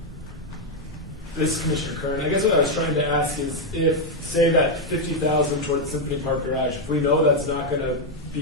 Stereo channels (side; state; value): both; normal; correlation 0.02